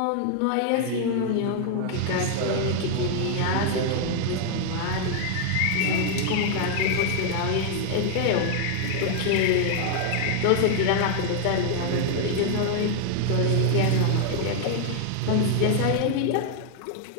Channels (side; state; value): both; different; correlation 0.00